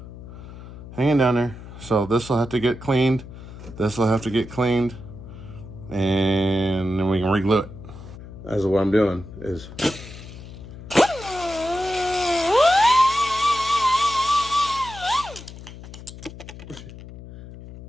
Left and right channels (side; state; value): left; noise; hum, 14 dB below the sound